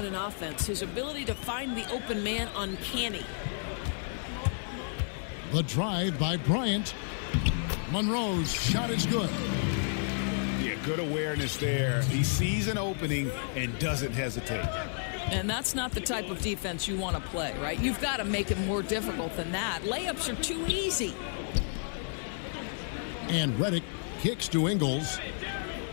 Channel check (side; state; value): right; silent; digital silence